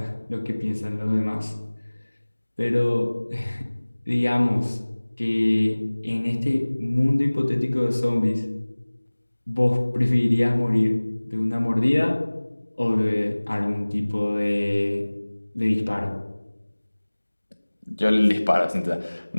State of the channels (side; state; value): both; inverted; correlation -1.00